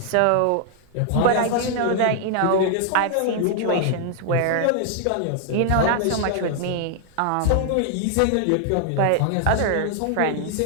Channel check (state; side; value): different; both; correlation 0.00